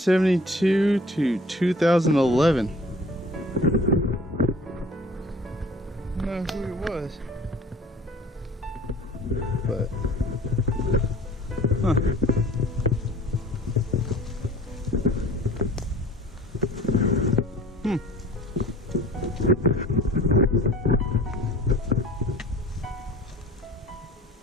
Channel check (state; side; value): normal; both; correlation 0.46